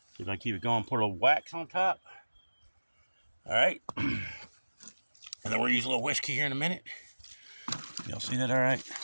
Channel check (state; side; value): inverted; both; correlation -1.00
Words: See if I can keep it going. Put a little wax on top. All right. And then we'll use a little whiskey here in a minute. Y'all see that all right?